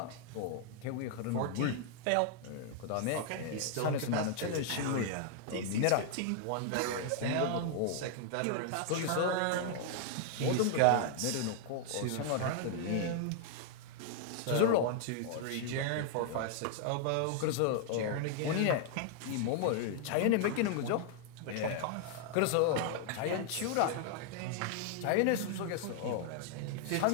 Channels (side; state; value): both; different; correlation 0.00